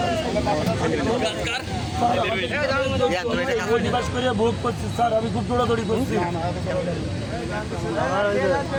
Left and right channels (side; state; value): both; identical; correlation 1.00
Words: ভোগ করছি স্যার, আমি খুব দৌড়াদৌড়ি করছি।